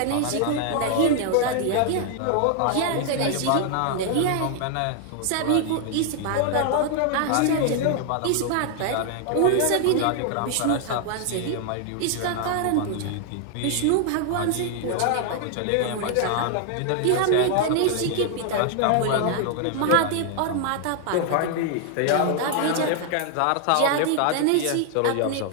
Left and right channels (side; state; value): both; different; correlation 0.00